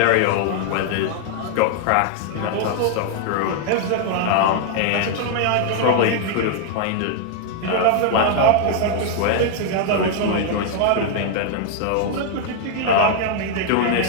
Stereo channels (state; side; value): different; both; correlation 0.00